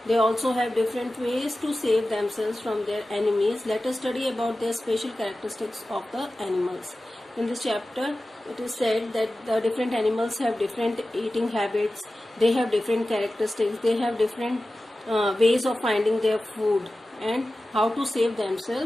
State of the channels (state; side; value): normal; both; correlation 0.95